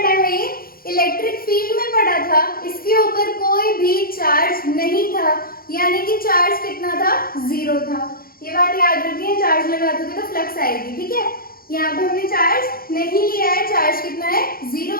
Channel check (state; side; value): late; right; 0.43 ms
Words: है ये, इलेक्ट्रिक फील्ड में पड़ा था, इसके ऊपर कोई भी चार्ज नहीं था, यानी कि चार्ज कितना था, 0 था। ये बात याद रखिए, चार्ज लगा दोगे तो फ्लक्स आएगी, ठीक है। यहाँ पे हमने चार्ज नहीं लिया है, चार्ज कितना है,